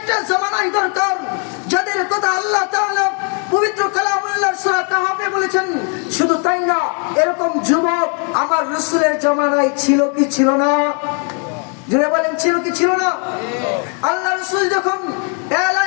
জামানায় দরকার, যাদের কথা আল্লাহ তাআলা পবিত্র কালামুল্লাহ সূরা কাহাফে বলেছেন। শুধু তাই না, এরকম যুবক আমার রাসূলের জামানায় ছিল কি ছিল না? জোরে বলেন, ছিল কি ছিল না? আল্লাহ রাসূল যখন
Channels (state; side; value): quieter; right; 39.3 dB